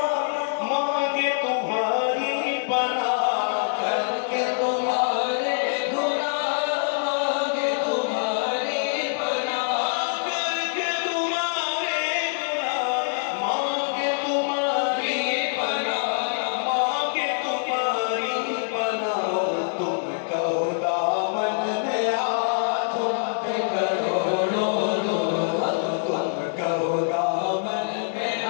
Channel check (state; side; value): silent; right; digital silence